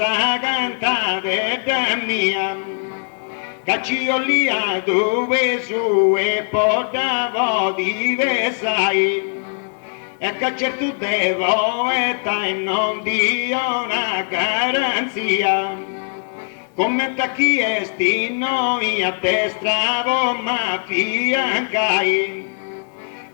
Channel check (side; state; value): right; silent; 66 dB below the other